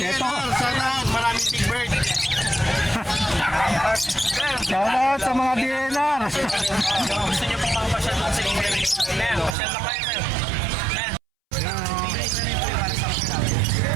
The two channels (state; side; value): drops out; left; at 9.6 s